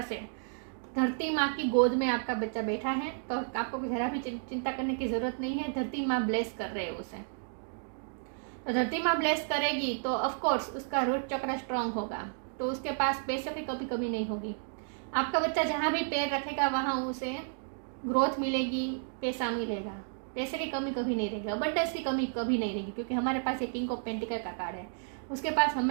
से। धरती माँ की गोद में आपका बच्चा बैठा है, तो आपको जरा भी चिंता करने की जरूरत नहीं है। धरती माँ ब्लेस कर रहे हैं उसे। तो धरती माँ ब्लेस करेगी तो ऑफ कोर्स उसका रूट चक्र स्ट्रांग होगा, तो उसके पास पैसे की कभी कभी नहीं होगी। आपका बच्चा जहाँ भी पैर रखेगा वहाँ उसे ग्रोथ मिलेगी, पैसा मिलेगा, पैसे की कमी कभी नहीं रहेगी, अबंडेंस की कमी कभी नहीं रहेगी, क्योंकि हमारे पास ये किंग ऑफ पेंटिकल का कार्ड है। उसके पास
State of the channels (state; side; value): silent; left; digital silence